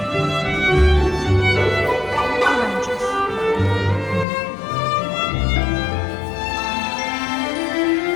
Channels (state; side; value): drops out; right; at 4.2 s